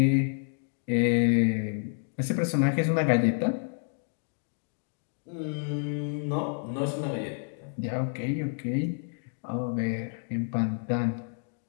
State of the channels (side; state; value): right; silent; 58 dB below the other